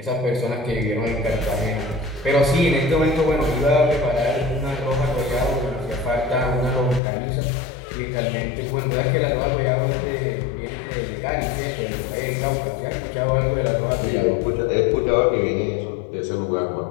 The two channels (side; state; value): right; drops out; at 7.0 s